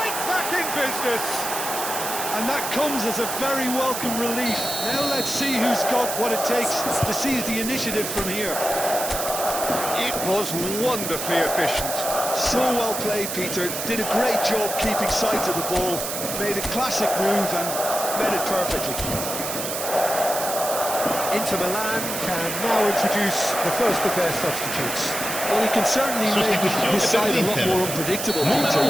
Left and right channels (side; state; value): right; noise; hiss, 4 dB below the sound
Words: back in business. And that comes as a very welcome relief. Now let's see who's got what it takes to seize the initiative from here. It was wonderfully efficient. So well played, Peter. Did a great job keeping sight of the ball. Made a classic move and made it perfectly. Inter Milan can now introduce the first of their substitutes. Well, he can certainly make his side a lot more unpredictable, Peter.